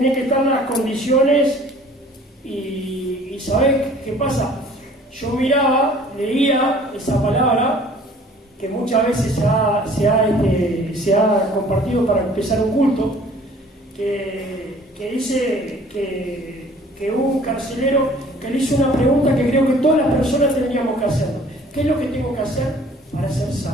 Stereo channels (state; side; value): normal; both; correlation 0.52